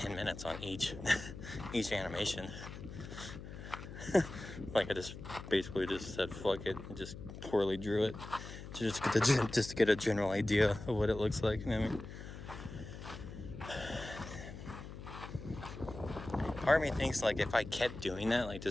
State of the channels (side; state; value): left; noise; hum, 11 dB below the sound